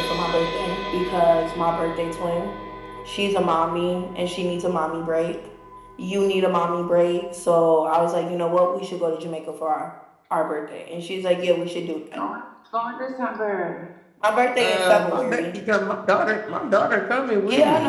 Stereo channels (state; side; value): identical; both; correlation 1.00